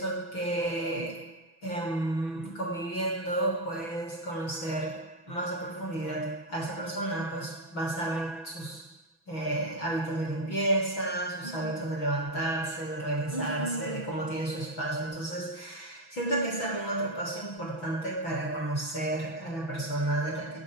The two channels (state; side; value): late; right; 6.1 ms